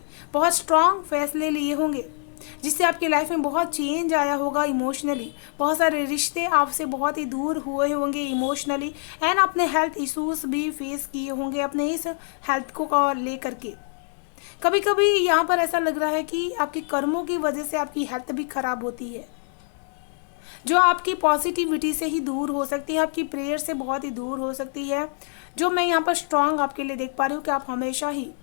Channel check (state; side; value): silent; right; 60 dB below the other